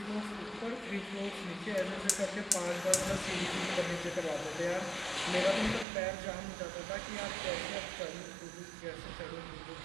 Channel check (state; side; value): drops out; left; at 5.9 s